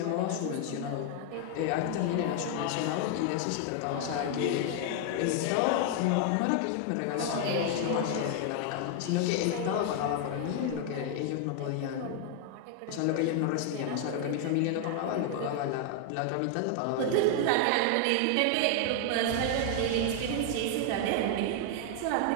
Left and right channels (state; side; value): different; both; correlation 0.00